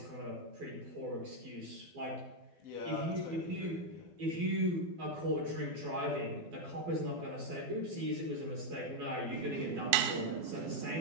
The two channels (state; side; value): late; left; 12 ms